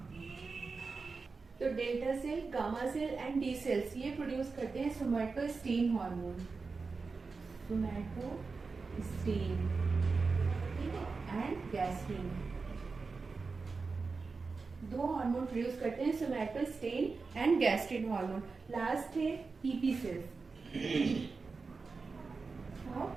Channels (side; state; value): left; quieter; 4.4 dB